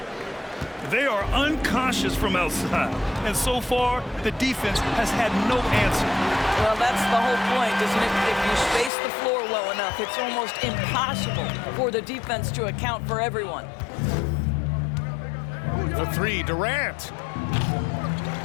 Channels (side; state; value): right; drops out; at 8.9 s